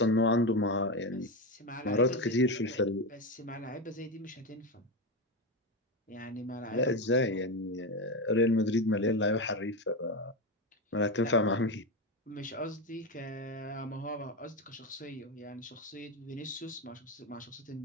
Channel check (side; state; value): both; normal; correlation 0.15